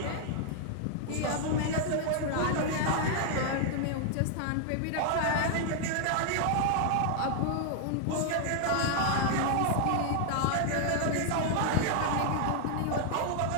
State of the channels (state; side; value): different; both; correlation 0.00